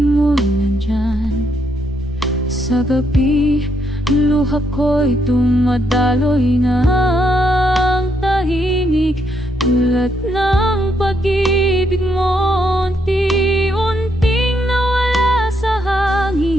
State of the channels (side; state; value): both; normal; correlation 0.76